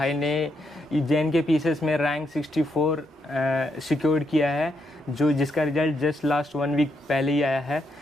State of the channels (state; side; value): normal; both; correlation 0.79